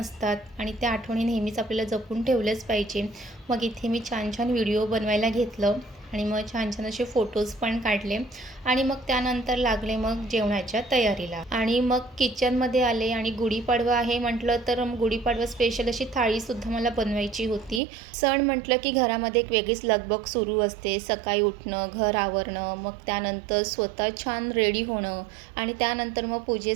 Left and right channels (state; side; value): drops out; left; at 17.8 s